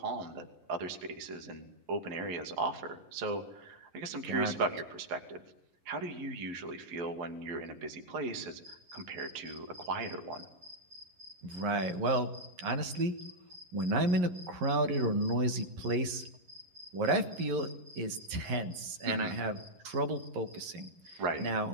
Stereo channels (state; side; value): late; left; 11 ms